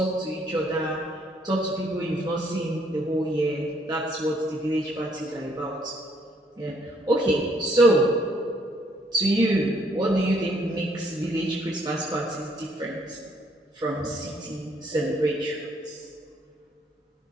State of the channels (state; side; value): normal; both; correlation 0.67